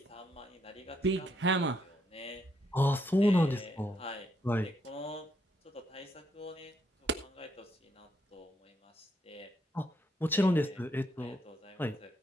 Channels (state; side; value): normal; both; correlation 0.75